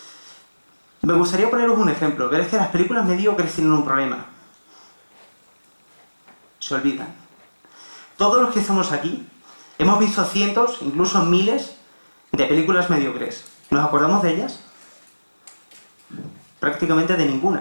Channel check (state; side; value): inverted; both; correlation -1.00